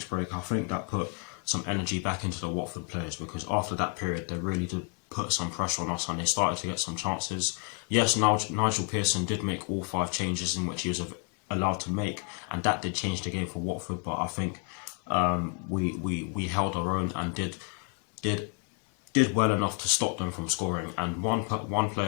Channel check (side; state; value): right; quieter; 35.7 dB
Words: break, I think that put some energy back into the Watford players, because after that period they really did put some pressure on us and they started to get some chances. Yes, Nigel Pearson did make all 5 changes in which he was allowed to make, and that did change the game for Watford, but I think we held our own and did well enough to stop them from scoring. And one